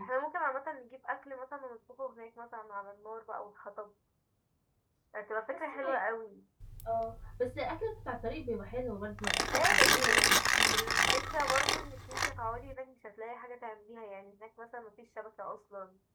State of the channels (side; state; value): both; identical; correlation 1.00